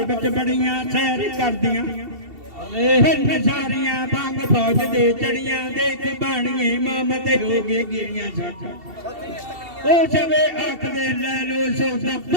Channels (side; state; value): left; late; 2.7 ms